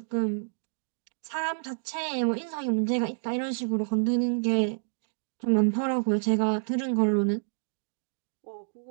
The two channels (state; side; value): silent; left; digital silence